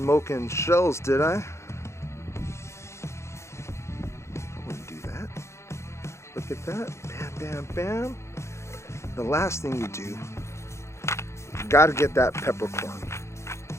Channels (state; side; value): late; right; 0.13 ms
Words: shells, did I? I wouldn't do that. Look at that. Bam, bam, bam. The last thing you do, you gotta get that peppercorn.